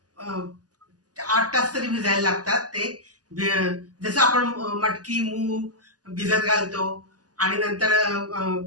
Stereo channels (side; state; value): left; late; 0.68 ms